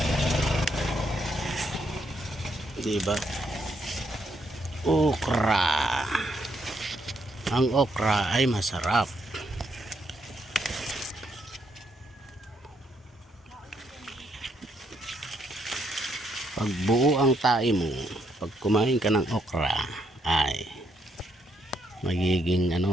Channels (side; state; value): both; normal; correlation 0.75